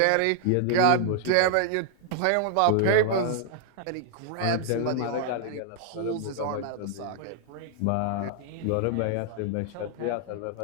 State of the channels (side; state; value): both; different; correlation 0.00